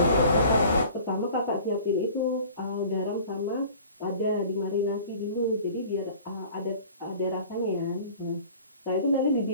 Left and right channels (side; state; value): both; inverted; correlation -0.46